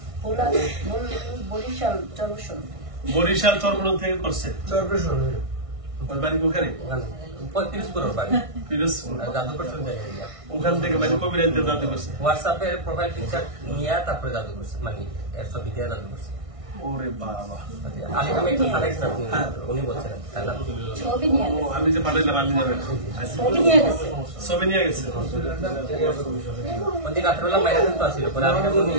বরিশাল চরবসন। বরিশাল চরমনাই থেকে করছে চরপেশন ওর বাড়ি ওখানে ওখানে 35 করোড় বাড়ি পিরোজপুর। আর জাদু করছেন জায়গায় ওখান থেকে মানে কবিরাজদের জানতে করছে। হোয়াটসঅ্যাপে প্রোফাইল পিকচার নিয়ে তারপরে জাদু করছে মানে এর ছবি দিয়ে জাদু করছে ওরে বাবা, আলিকামে একটু পাঠাইছেন আপনি উনি বলছেন তাই না ছবি নিয়ে ও গেছে আমি যে পাঠাইলাম আপনি যাবেন। ছবি নিয়ে গেছে ছবি নিয়ে গেছে। ওদিন রাত্রেবেলা মাইরা কিন্তু আসছিল পরে আমি উনি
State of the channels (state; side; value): late; left; 1.6 ms